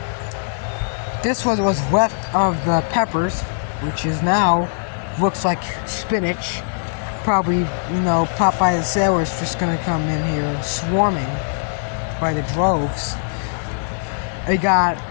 This was left of the peppers, which is now looks like spinach. Probably, Popeye the Sailor's just gonna come in here swarming by the droves. I got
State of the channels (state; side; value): silent; right; 65 dB below the other